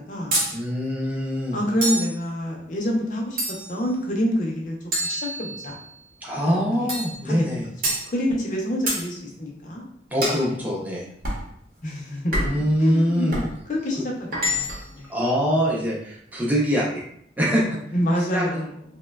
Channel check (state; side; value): normal; both; correlation 0.63